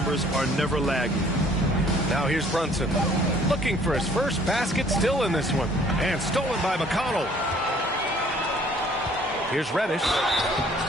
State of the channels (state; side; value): normal; both; correlation 0.57